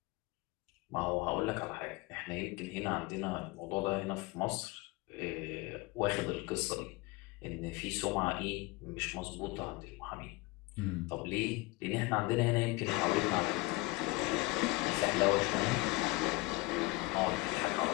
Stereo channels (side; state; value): right; quieter; 23.3 dB